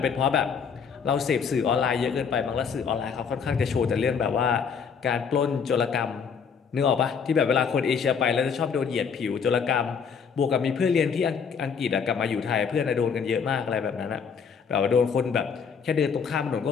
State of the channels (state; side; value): quieter; right; 6.3 dB